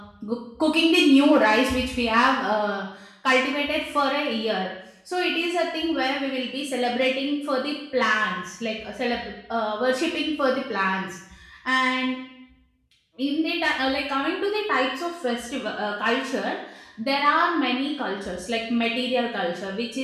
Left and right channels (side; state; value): both; identical; correlation 1.00